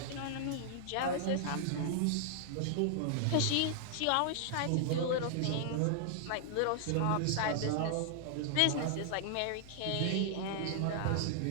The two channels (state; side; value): different; both; correlation -0.01